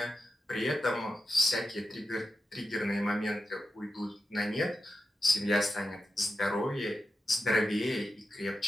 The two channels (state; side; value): normal; both; correlation 0.90